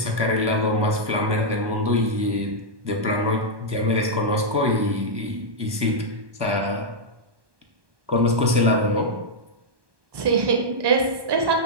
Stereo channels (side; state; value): left; late; 1.2 ms